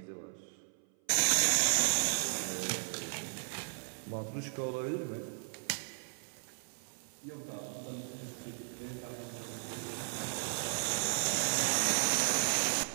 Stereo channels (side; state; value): left; silent; 54 dB below the other